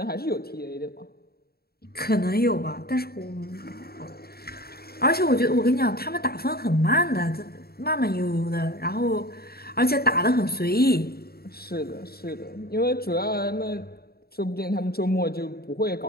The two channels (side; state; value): right; late; 0.45 ms